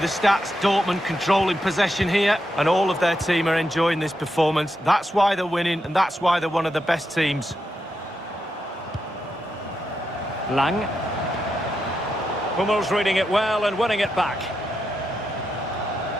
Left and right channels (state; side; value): normal; both; correlation 0.85